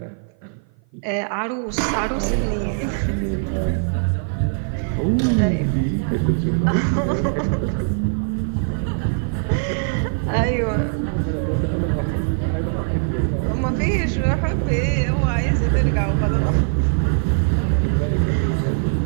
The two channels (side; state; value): left; silent; 55 dB below the other